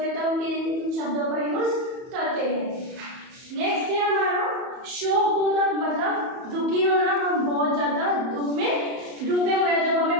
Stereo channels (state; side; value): late; left; 31 ms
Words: हैं तो हम किन शब्दों का यूज करते हैं? नेक्स्ट है हमारा शोक बोधक, मतलब दुखी होना। हम बहुत ज्यादा दुख में डूबे हुए हैं, जब